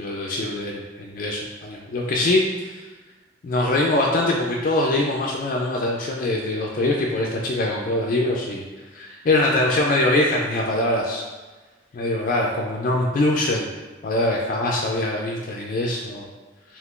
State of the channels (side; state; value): both; normal; correlation 0.27